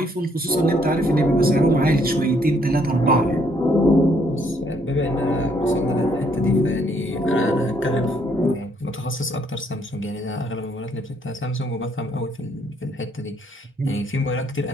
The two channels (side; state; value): both; normal; correlation 0.69